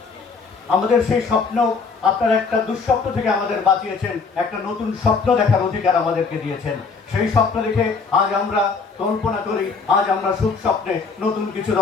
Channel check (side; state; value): right; quieter; 4.8 dB